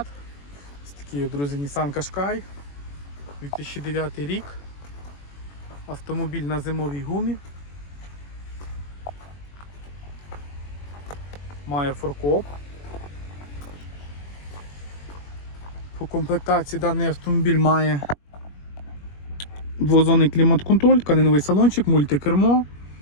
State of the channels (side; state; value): right; late; 21 ms